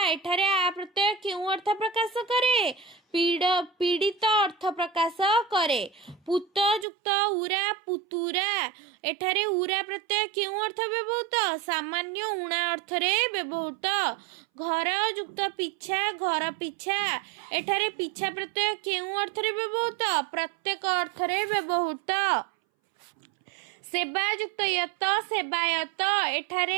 ଏଠାରେ ଆ ପ୍ରତ୍ୟୟ କେଉଁ ଅର୍ଥ ପ୍ରକାଶ କରେ ପୀଡ଼ିତ ଅର୍ଥ ପ୍ରକାଶ କରେ ପୁତ ଯୁକ୍ତ ଉରା ପୁତୁରା ଏଠାରେ ଉରା ପ୍ରତ୍ୟୟ କେଉଁ ଅର୍ଥ ବ୍ୟବହୃତ ସାମାନ୍ୟ ଉଣା ଅର୍ଥରେ ବ୍ୟବହୃତ ଘର ଯୁକ୍ତ ପିଛା ଘର ପିଛା ଏଠାରେ ପିଛା ପ୍ରତ୍ୟୟ କେଉଁ ଅର୍ଥରେ ବ୍ୟବହୃତ ପ୍ରତ୍ୟେକ ଅର୍ଥରେ ବ୍ୟବହୃତ ସେବା ଯୁକ୍ତ ୟତ ସେବାୟତ ଏଠାରେ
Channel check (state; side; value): drops out; left; at 6.9 s